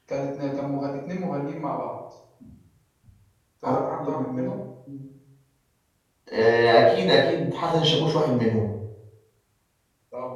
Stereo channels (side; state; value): both; identical; correlation 1.00